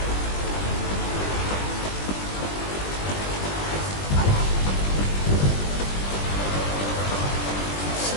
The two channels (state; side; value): late; right; 20 ms